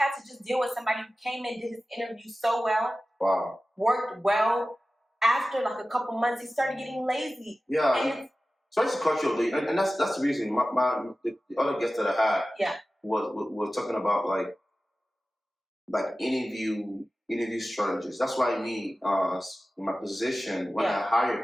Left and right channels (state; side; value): normal; both; correlation 0.96